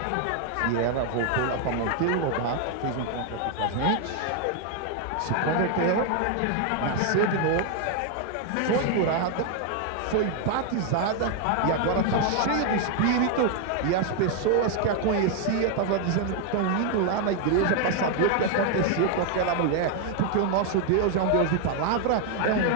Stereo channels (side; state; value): both; different; correlation 0.00